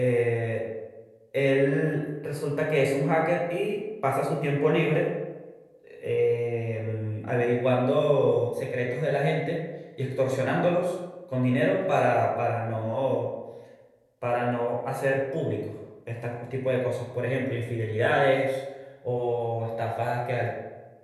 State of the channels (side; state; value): both; identical; correlation 1.00